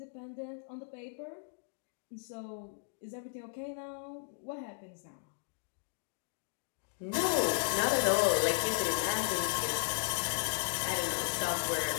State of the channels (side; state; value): right; silent; digital silence